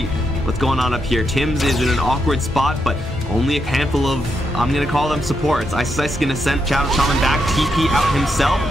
What's going on up here? Tims is in an awkward spot, but only a handful of, I'm going to call them supports. Ice Ice is going to send Shadow Shaman back, TP out himself.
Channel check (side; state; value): both; normal; correlation 0.81